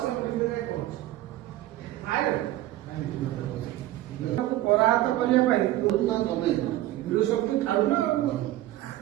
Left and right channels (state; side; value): quieter; left; 15.0 dB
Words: ପରାହତ କରିବା ପାଇଁ ବିରୋଧ ଶକ୍ତି ଛାଡୁନ।